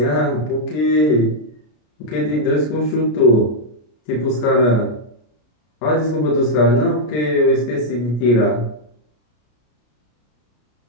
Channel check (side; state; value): right; late; 33 ms